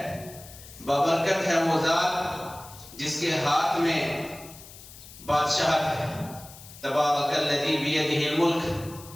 بابرکت ہے وہ ذات جس کے ہاتھ میں بادشاہت ہے. تبارک الذی بیدہ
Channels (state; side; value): noise; left; hiss, 18 dB below the sound